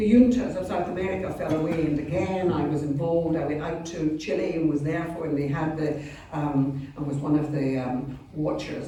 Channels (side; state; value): both; identical; correlation 1.00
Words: juntas of South America fell away, and again I was involved. I went out to Chile and was there for, and they had the, and was one of the